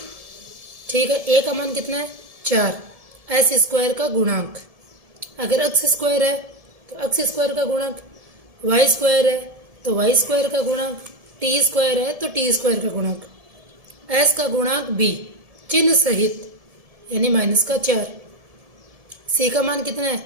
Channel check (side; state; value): left; late; 1.7 ms